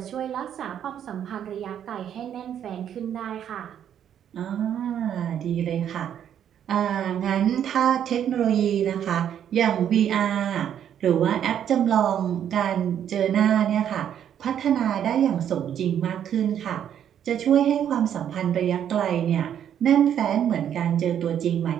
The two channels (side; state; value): left; quieter; 9.5 dB